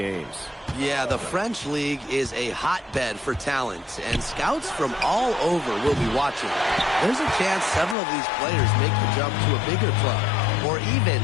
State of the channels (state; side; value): drops out; right; at 8.0 s